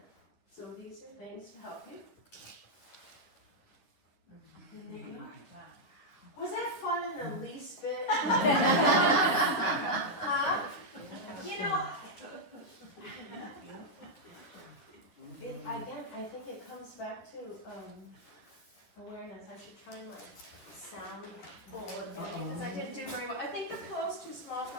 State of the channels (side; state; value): right; late; 10 ms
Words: So these are things to help you. Was that fun in the least bit? Huh? You know, again, I think it comes back to awareness. I should try my sound bowl again, because I didn't do very well. I think the pillow's too small